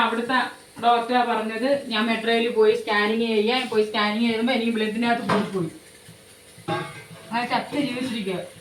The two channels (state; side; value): identical; both; correlation 1.00